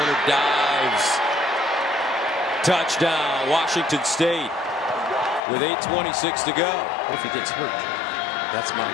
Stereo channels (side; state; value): right; drops out; at 5.4 s